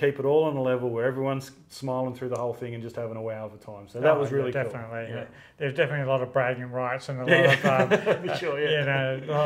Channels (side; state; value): both; identical; correlation 1.00